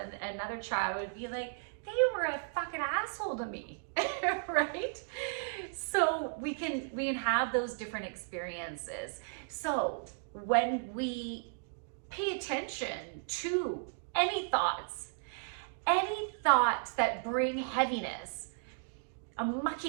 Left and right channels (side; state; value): left; silent; digital silence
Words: another child would be like, they were a fucking asshole to me, right? So we can have those different experiences. So when we pay attention to any thoughts that bring heaviness, a